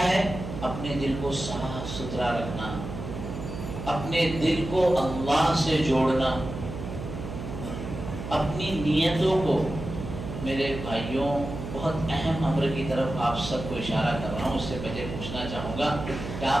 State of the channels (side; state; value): right; noise; hum, 8 dB below the sound